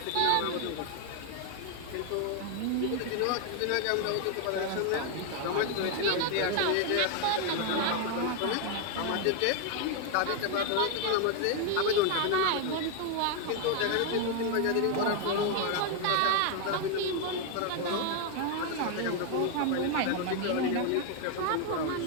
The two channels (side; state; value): both; different; correlation 0.01